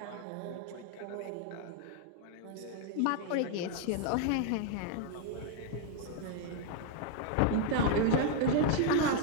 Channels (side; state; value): both; different; correlation 0.00